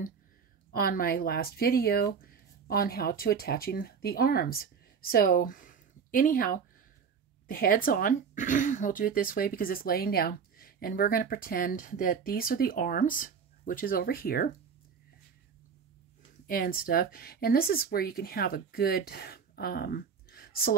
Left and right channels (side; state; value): left; quieter; 6.4 dB